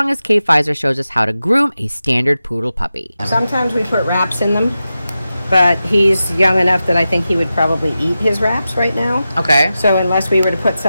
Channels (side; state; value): both; inverted; correlation -0.92